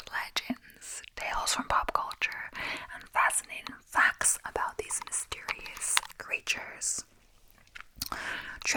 legends, tales from pop culture, and fascinating facts about these mysterious creatures.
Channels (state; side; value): identical; both; correlation 1.00